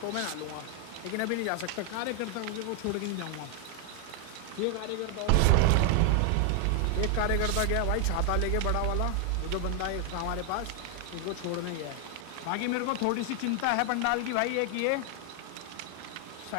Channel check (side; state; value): both; different; correlation 0.00